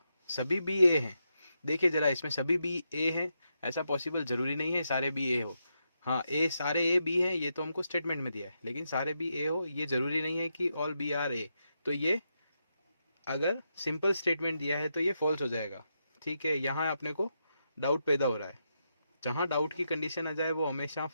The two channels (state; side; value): inverted; both; correlation -0.83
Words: सभी बी ए हैं? देखिए जरा, इसमें सभी बी ए हैं, ऐसा पॉसिबल जरूरी नहीं है सारे बी ए हो। हाँ, ए सारे ए बी है, ये तो हमको स्टेटमेंट में दिया है, लेकिन सारे बी ए हो ये जरूरी नहीं है कि ऑल बी आर ए। तो ये अगर सिंपल स्टेटमेंट दिया है तो ये फॉल्स हो जाएगा। ठीक है, यहाँ अपने को डाउट पैदा हो रहा है, जहाँ डाउट की कंडीशन आ जाए वो हमेशा